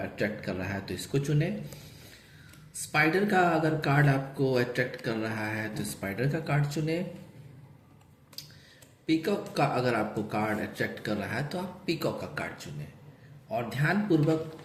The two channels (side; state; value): both; identical; correlation 1.00